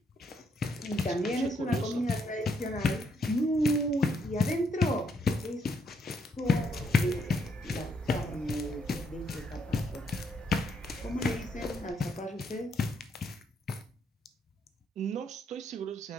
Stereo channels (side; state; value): both; normal; correlation 0.74